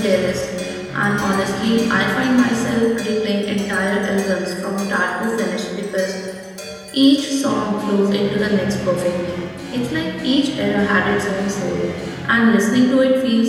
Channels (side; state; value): both; identical; correlation 1.00